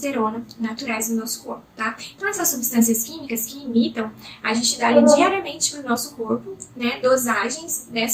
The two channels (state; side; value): identical; both; correlation 1.00